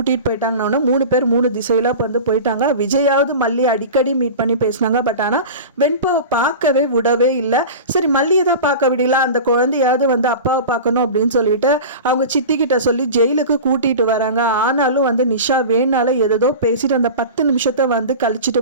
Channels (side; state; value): both; inverted; correlation -0.32